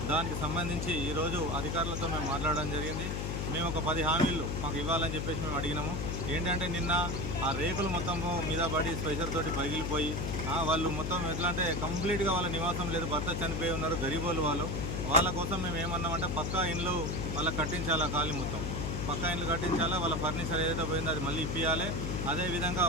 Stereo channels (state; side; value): noise; left; hum, 2 dB below the sound